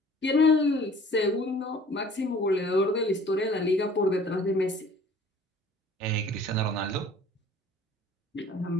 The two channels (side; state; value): both; normal; correlation 0.50